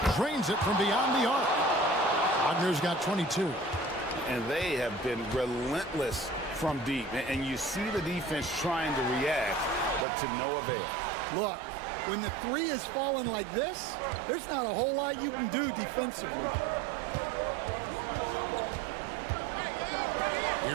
Drains it from beyond the arc. Wagner's got 22. And they have been relentless from deep. And you see the defense trying to react, but to no avail. Look, when the three is falling like this, there's not a whole lot you can do defensively.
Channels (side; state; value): left; drops out; at 10.1 s